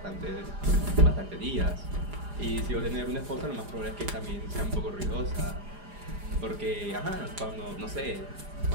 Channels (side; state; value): left; late; 4.9 ms